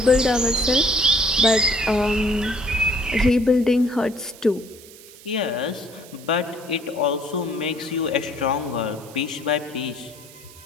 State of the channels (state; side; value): noise; right; hiss, 20 dB below the sound